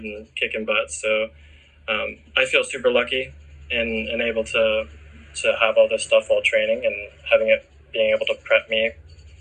and kicking butt. So I feel super lucky and able to have all this stuff while training and being able to prep me,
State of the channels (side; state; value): both; identical; correlation 1.00